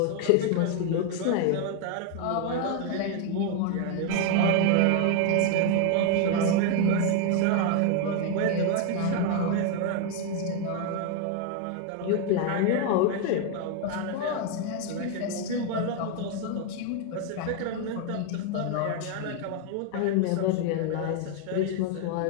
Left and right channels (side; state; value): both; different; correlation 0.01